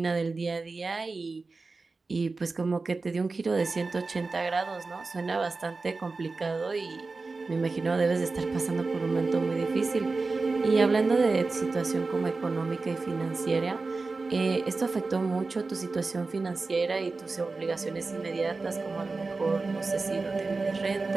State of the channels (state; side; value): quieter; left; 3.9 dB